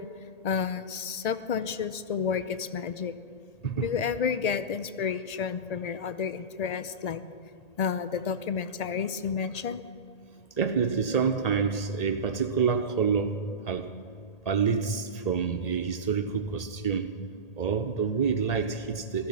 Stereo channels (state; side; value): late; right; 1.8 ms